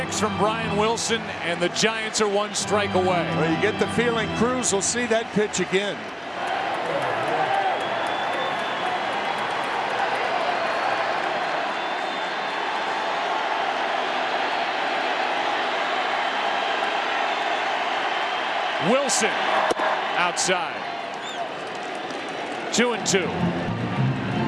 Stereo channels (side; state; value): both; identical; correlation 1.00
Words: from Brian Wilson, and the Giants are 1 strike away. Well, you get the feeling Cruz will see that pitch again. Wilson outside. 2-2.